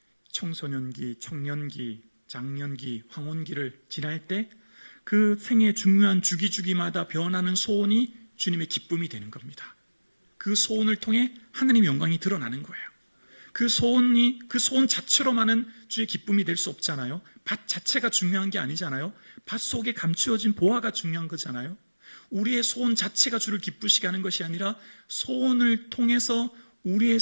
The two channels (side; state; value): both; inverted; correlation -1.00